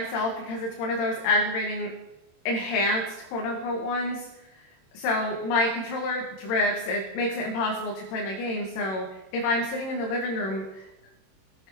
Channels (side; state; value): right; late; 26 ms